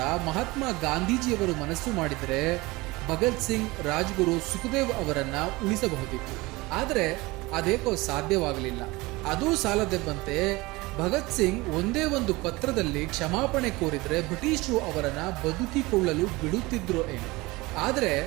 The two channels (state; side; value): quieter; left; 22.0 dB